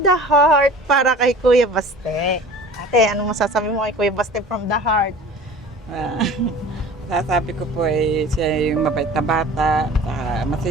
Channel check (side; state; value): both; normal; correlation 0.42